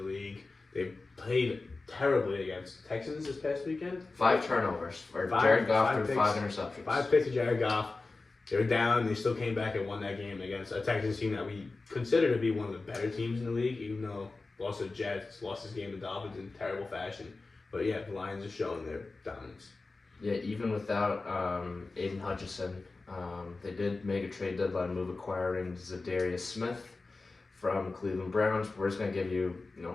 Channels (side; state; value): right; quieter; 3.6 dB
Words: league. They played terribly against Texans this past weekend. 5 turnovers for Jared Goff threw 5 interceptions. 5 picks to Jared Goff. They were down. They still came back and won that game against a Texans team that we consider to be one of the better teams in the league, even though lost to the Jets, lost this game to Dolphins in terrible fashion. But yeah, the Lions are showing their dominance. Yeah, even without Aiden Hutchinson, they did make a trade deadline move acquiring Zadarius Smith from Cleveland Browns. We're just going to give you,